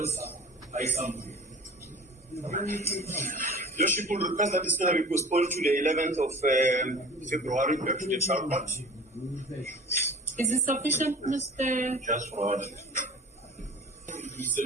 Lordship will request that this matter be postponed to the 11th of February back to the trial court. Is it sufficient, Mr. Just for order.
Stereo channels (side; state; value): both; normal; correlation 0.41